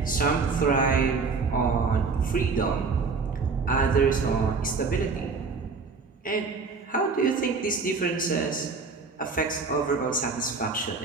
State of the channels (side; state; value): left; quieter; 4.6 dB